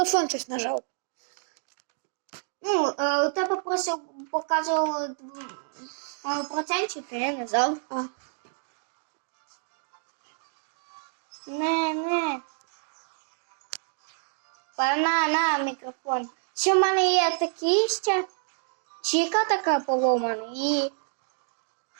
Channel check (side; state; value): left; silent; 59 dB below the other